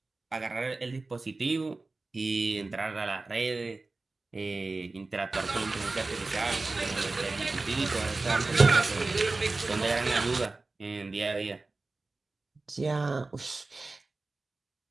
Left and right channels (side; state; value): left; quieter; 3.4 dB